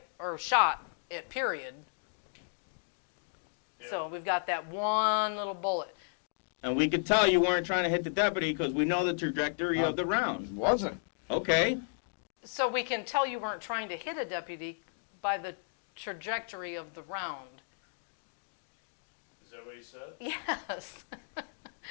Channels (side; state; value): right; silent; digital silence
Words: Or shot it, period. Yeah. So we've got that one little bullet. And we could tell you weren't trying to hit the deputy because we know the trajectory of the round. Wasn't. Okay. So we can tell you weren't trying to hit a deputy by the trajectory of the round. Is that what he said? Yes.